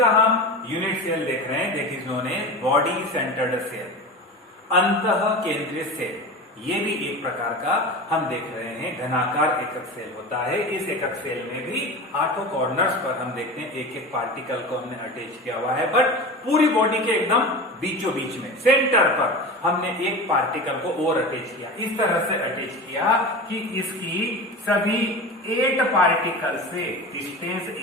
हम यूनिट सेल देख रहे हैं, that is known as body centred cell, अंतः केंद्रित सेल। ये भी एक प्रकार का हम देख रहे हैं घनाकार एकक सेल होता है। इस एकक सेल में भी 8 कॉर्नर्स पर हम देखते हैं एक एक पार्टिकल को हमने अटैच किया हुआ है, बट पूरी बॉडी के एकदम बीचों बीच में सेंटर पर हमने एक पार्टिकल को और अटैच किया। इस तरह से अटैच किया कि इसकी सभी 8 पार्टिकल से डिस्टेंस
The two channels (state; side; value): normal; both; correlation 0.29